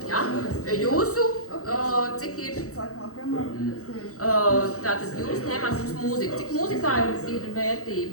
Jā? Jūsu, cik ir? Tātad jūs ņemat mums mūziku. Cik mūzikā ir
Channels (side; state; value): right; late; 0.65 ms